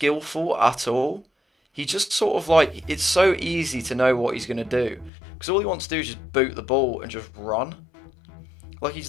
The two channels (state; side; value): drops out; right; at 5.1 s